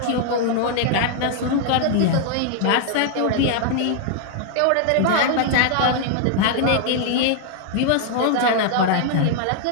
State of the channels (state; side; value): different; both; correlation 0.00